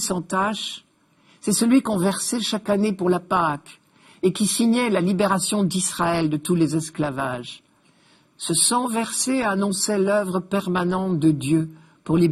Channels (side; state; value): both; identical; correlation 1.00